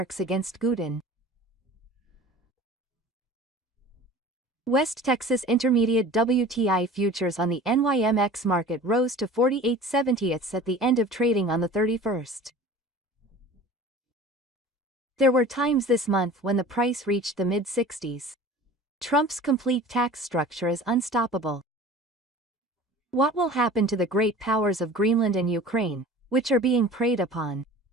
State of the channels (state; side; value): normal; both; correlation 0.41